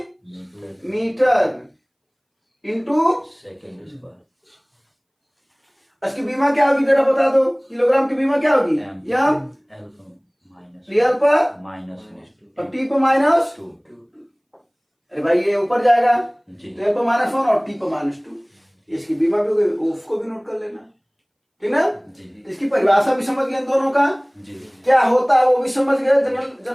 मीटर इंटू सेकेंड स्क्वायर। इसकी बीमा क्या होगी जरा बता दो? किलोग्राम की बीमा क्या होगी? एम रियल पर माइनस और टी पर -2। अरे भाई ये ऊपर जाएगा तो एल पर -1 और टी पर -2। इसकी बीमा भी होगी, उसको भी नोट कर लेना, ठीक ना? तो इसकी परिभाषा भी समझ गए दोनों का क्या होता है, वो भी समझ गए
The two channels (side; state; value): both; identical; correlation 1.00